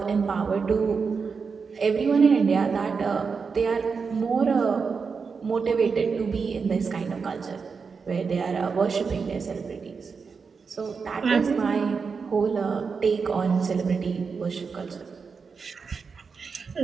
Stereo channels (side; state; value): left; quieter; 5.3 dB